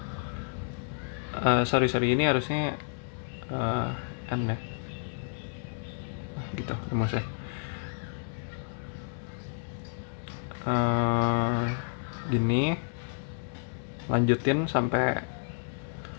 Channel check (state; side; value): silent; right; digital silence